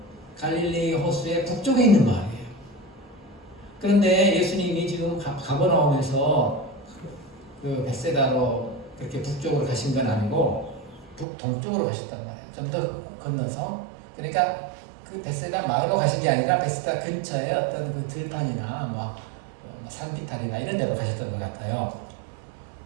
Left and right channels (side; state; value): left; drops out; at 11.2 s